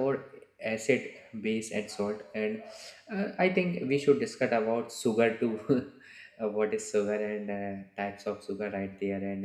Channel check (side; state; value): both; identical; correlation 1.00